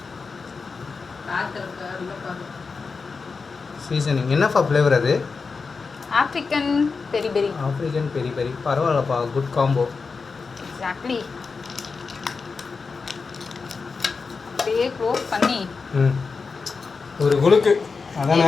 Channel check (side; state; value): right; quieter; 4.7 dB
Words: சீசனிங் என்னப்பா ஃப்ளேவர் அது? ஆப்ரிக்கன் பெரி பெரி. ஆப்ரிக்கன் பெரி பெரி, பரவாயில்லப்பா, குட் காம்போ. எக்ஸாக்ட்லி. அப்படியே க்ளோஸ் பண்ணி ஒரு குலுக்கு,